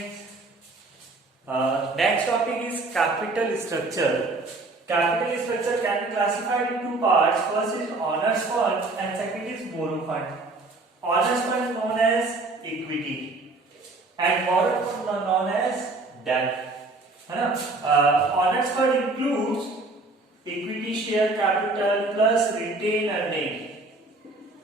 Next topic is capital structure. Capital structure can be classified in two parts. First is owners fund and second is borrow fund. Owners fund is known as equity and borrow fund is known as debt. है ना? Owners fund includes equity share capital plus retained earning.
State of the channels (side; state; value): left; quieter; 3.3 dB